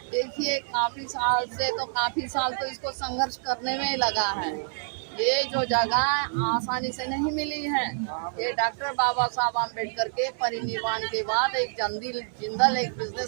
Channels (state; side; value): silent; left; digital silence